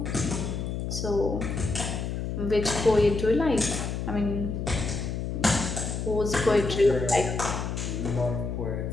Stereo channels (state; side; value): noise; left; hum, 3 dB below the sound